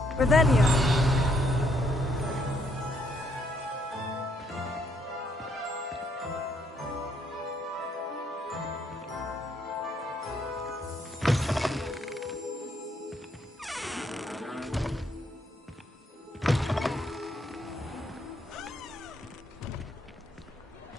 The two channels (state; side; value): normal; both; correlation 0.72